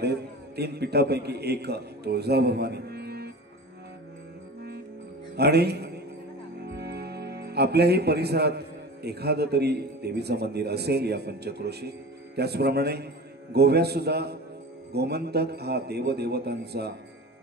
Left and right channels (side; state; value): both; normal; correlation 0.34